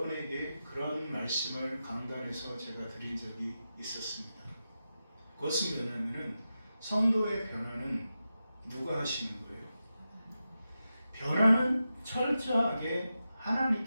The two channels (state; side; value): inverted; both; correlation -0.91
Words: 그런 말씀을 강단에서 제가 드린 적이 있었습니다. 그것은 뭐냐면은 성도의 변화는 누가 하시는 거예요? 변화는 철저하게